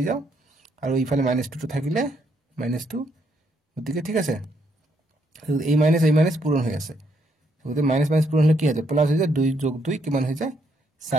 যাও আৰু ইফালে -2 টো থাকিলে -2 গতিকে ঠিক আছে এই মাইনাস পূৰণ হৈ আছে গতিকে মাইনাস পূৰণ হলে কি হয় প্লাস হৈ যায় 2 যোগ 2 কিমান হৈ যায়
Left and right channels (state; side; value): normal; both; correlation 0.74